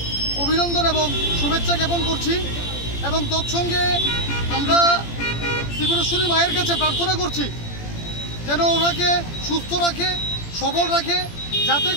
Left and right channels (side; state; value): right; late; 17 ms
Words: অভিনন্দন এবং শুভেচ্ছা জ্ঞাপন করছি এবং তৎসঙ্গে আমরা ত্রিপুরেশ্বরী মায়ের কাছে প্রার্থনা করছি যেন ওনাকে সুস্থ রাখে, সবল রাখে, যাতে